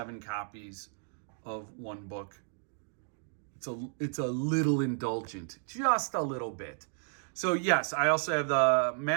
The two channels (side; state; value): left; silent; 56 dB below the other